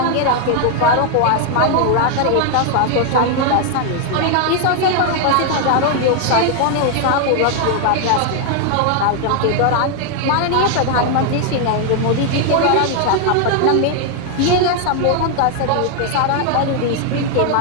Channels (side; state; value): both; different; correlation 0.00